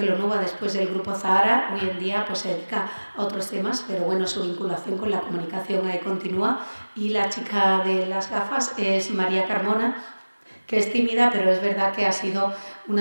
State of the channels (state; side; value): inverted; both; correlation -1.00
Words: después del Grupo Zahara, hoy en día pues se dedica a otros temas, pero bueno, su vinculación con la comunicación ahí continúa. Y la chica de las gafas es María Carmona, que es tímida, pero es verdad que ha sido